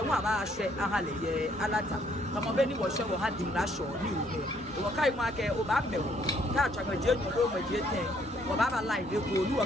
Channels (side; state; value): both; normal; correlation 0.66